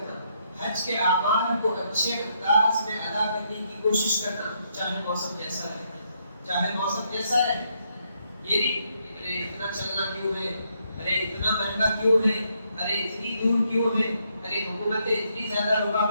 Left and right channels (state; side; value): inverted; both; correlation -0.75